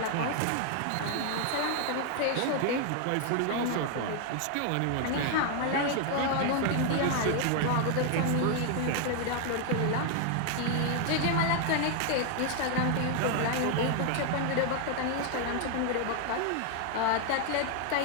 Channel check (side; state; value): both; different; correlation 0.00